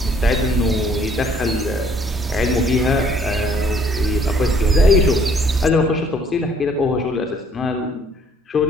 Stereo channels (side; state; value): both; normal; correlation 0.61